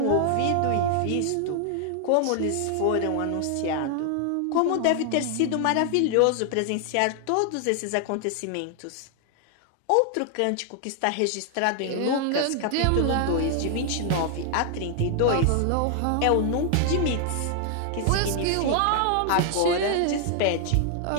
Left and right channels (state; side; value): different; both; correlation 0.00